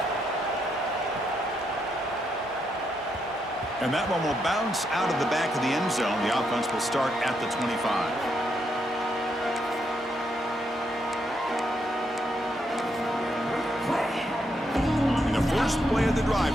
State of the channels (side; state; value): both; normal; correlation 0.79